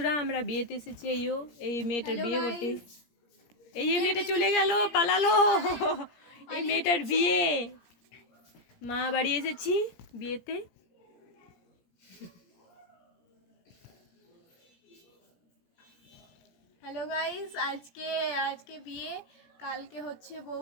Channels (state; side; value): late; right; 17 ms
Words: আমরা বিয়েতে এসেছি। এই মেয়েটার বিয়ে করতে। এই মেয়েটা চলে গেল, পালালো। এই মেয়েটার বিয়ে, মা বাড়ি এসেছি বিয়েতে। হ্যালো গাইস, আজকে বিয়ে, কালকে হচ্ছে বউ